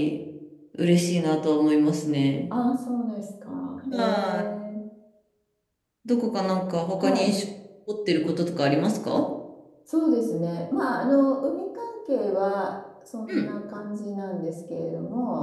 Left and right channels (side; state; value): both; identical; correlation 1.00